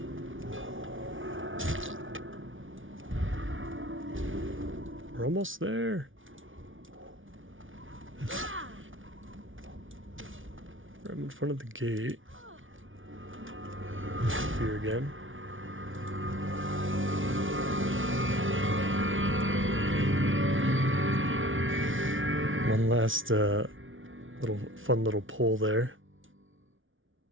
We're almost there. I'm in front of the gate. Fear again. One last fun little pull there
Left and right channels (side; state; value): left; late; 0.57 ms